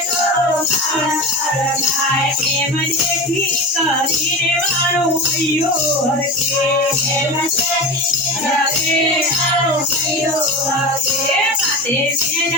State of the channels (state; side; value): normal; both; correlation 0.26